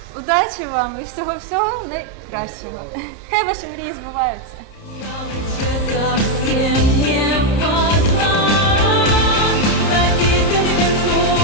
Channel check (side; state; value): right; late; 30 ms